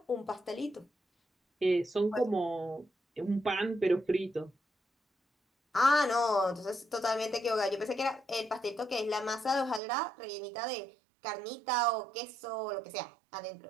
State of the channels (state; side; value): drops out; left; at 9.8 s